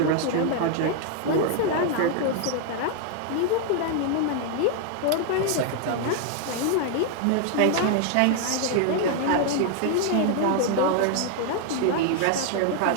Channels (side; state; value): both; different; correlation 0.00